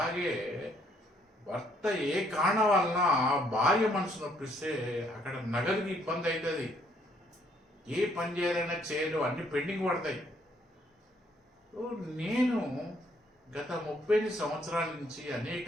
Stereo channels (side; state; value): both; normal; correlation 0.67